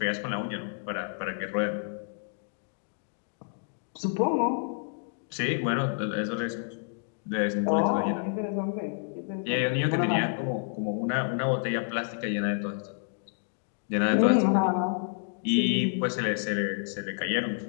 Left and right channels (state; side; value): silent; right; digital silence